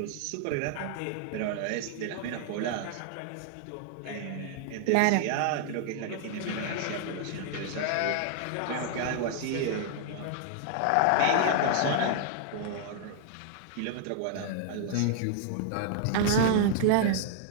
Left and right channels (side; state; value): both; different; correlation 0.00